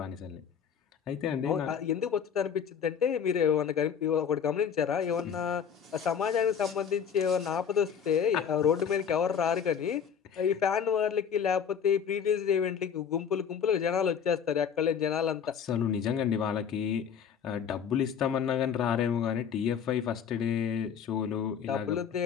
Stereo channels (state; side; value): quieter; right; 7.6 dB